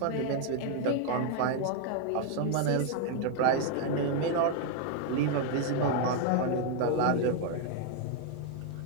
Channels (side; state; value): both; different; correlation 0.00